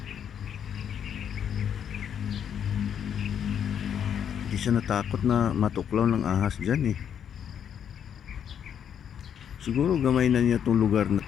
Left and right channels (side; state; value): right; quieter; 8.6 dB